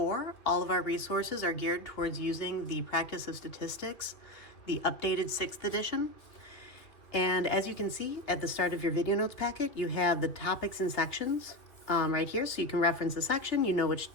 All of our resources are geared towards using the Practice of Statistics, the updated 6th edition. And as you can see at the start of your video notes packet, you have the topics and sections right here, so you can reference the section. You know which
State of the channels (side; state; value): right; late; 2.5 ms